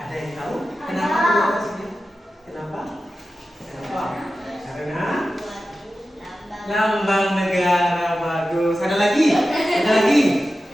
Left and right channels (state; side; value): normal; both; correlation 0.93